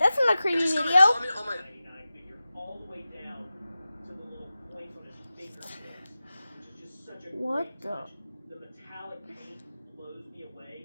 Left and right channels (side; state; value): both; inverted; correlation -0.95